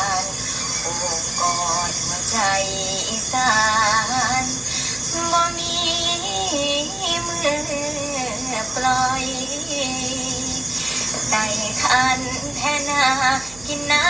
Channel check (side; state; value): right; noise; hum, 20 dB below the sound